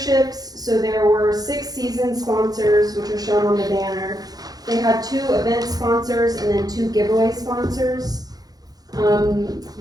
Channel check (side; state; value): left; late; 0.19 ms